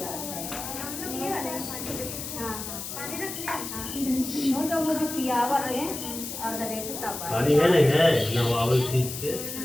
है। तो वो जो पियावर है और पानी है नहीं है ना आवल चीज के।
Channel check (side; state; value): left; noise; hiss, 7 dB below the sound